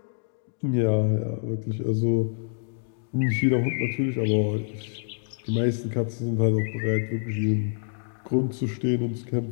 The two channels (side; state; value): right; silent; digital silence